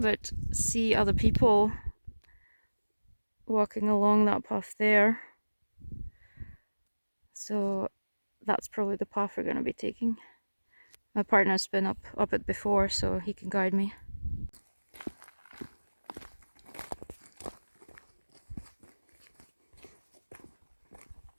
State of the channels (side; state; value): both; inverted; correlation -1.00